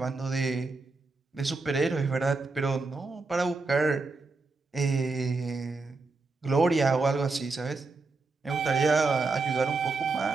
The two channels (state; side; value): quieter; left; 3.7 dB